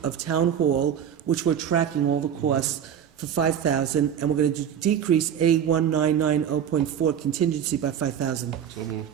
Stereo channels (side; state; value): left; quieter; 8.9 dB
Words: of town hall, which we're tracking all the costs, for $5,000, and we're going to decrease A1990.4 contingency by $5,000. So moved.